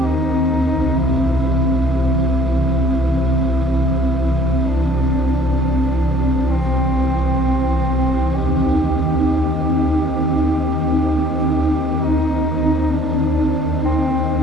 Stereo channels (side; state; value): both; normal; correlation 0.56